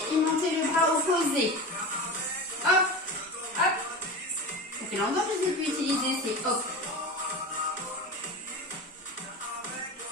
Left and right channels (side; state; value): both; normal; correlation 0.28